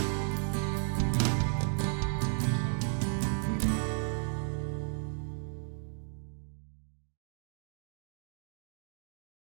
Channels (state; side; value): silent; left; 55 dB below the other